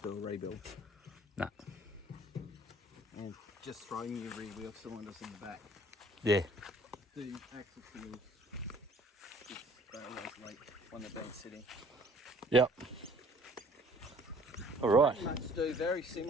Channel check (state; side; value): normal; both; correlation 0.54